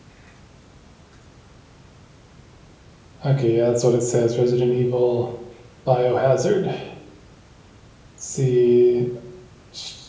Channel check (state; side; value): identical; both; correlation 1.00